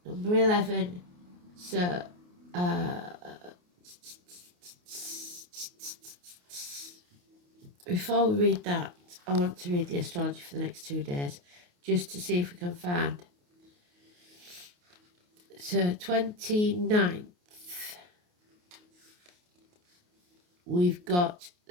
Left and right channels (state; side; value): late; left; 28 ms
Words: number 11. So, before we read that, I want to read the astrology for the next 2 days, just to see if we can find. So, 29th, we've got